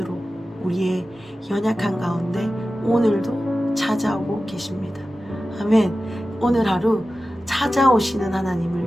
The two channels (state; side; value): normal; both; correlation 0.94